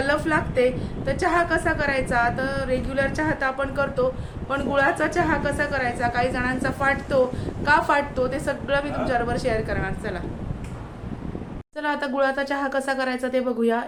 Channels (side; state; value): both; identical; correlation 1.00